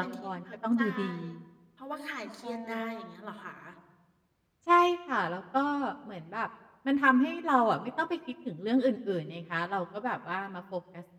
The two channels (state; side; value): identical; both; correlation 1.00